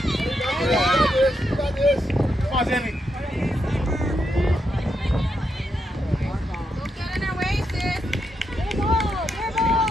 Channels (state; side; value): normal; both; correlation 0.82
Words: You got this. Come on, Zilly. Don't get in their way, sis.